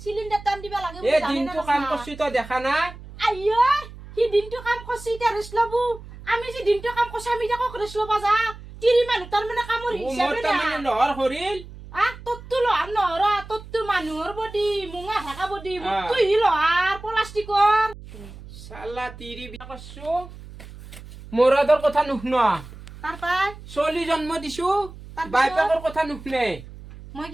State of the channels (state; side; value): noise; right; hum, 16 dB below the sound